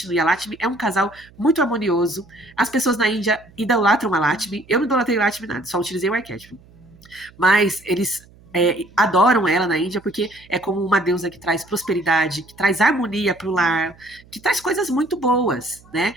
e a Lakshmi é um casal muito harmonioso. As pessoas na Índia idolatram a Lakshmi. Eu não idolatrei a Lakshmi nada, só utilizei o arquétipo. Mas eles adoram ela na Índia porque é como uma deusa que traz prosperidade, que traz harmonia pro lar, que traz coisas muito boas, né?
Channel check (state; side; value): noise; right; hum, 26 dB below the sound